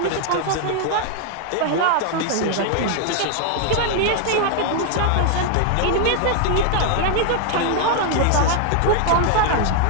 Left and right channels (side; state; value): both; different; correlation 0.00